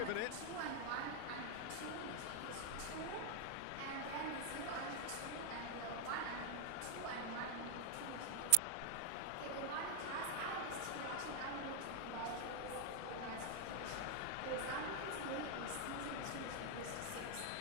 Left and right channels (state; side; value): different; both; correlation 0.00